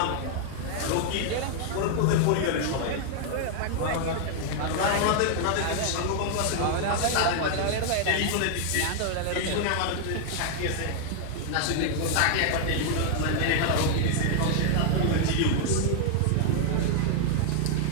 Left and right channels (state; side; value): different; both; correlation 0.00